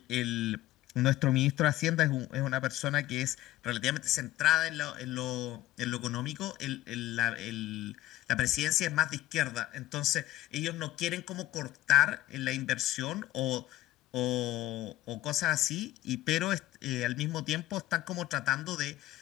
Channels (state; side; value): quieter; right; 15.6 dB